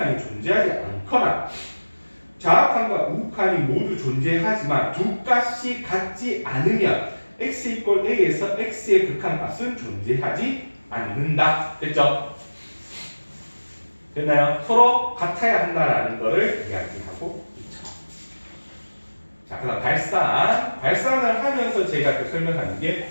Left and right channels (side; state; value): both; inverted; correlation -1.00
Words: 존재하지 않거나 자악한과 우극한이 모두 존재하지만 두 값이 같지 않으면 x 이퀄 a에서 x의 극한값은 존재하지 않는다. 됐죠? 됐나요? 서로 같아야 한다라는 것을 이야기하고 있죠. 자, 그 다음 발산을 하면서 제가 그 설명하는 게